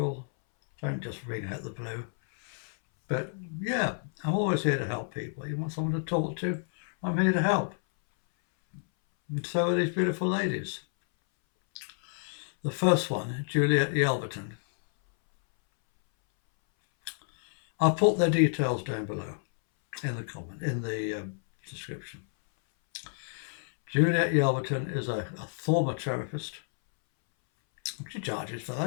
Don't just ring out the blue. But yeah, I'm always here to help people. You want someone to talk to? I'm here to help. And so are these beautiful ladies. The first one, Juliet Yelverton. I'll put their details down below in the description. Juliet Yelverton is a former therapist. She charges for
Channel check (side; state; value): right; silent; 58 dB below the other